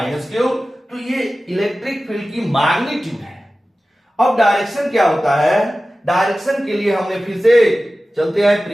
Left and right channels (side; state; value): both; normal; correlation 0.96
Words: Q, तो ये इलेक्ट्रिक फील्ड की मैग्नीट्यूड है। अब डायरेक्शन क्या होता है, डायरेक्शन के लिए हमने फिर से चलते हैं